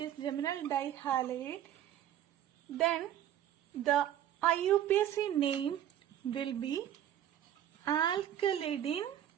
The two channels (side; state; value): left; quieter; 11.1 dB